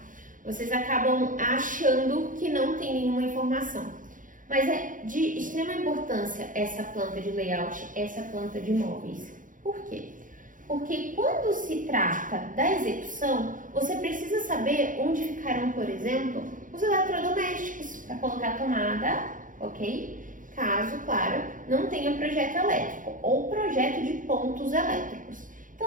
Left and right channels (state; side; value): late; left; 0.38 ms